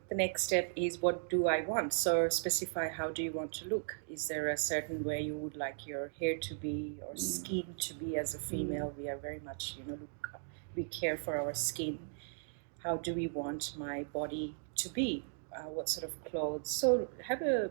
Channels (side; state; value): left; silent; digital silence